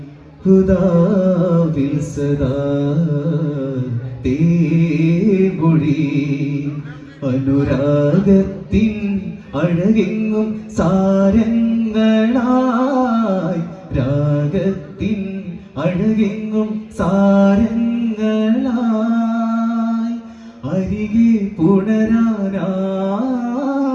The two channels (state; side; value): identical; both; correlation 1.00